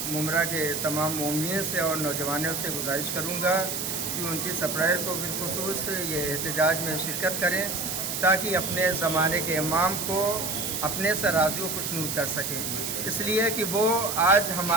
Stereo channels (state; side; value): noise; right; hiss, 3 dB below the sound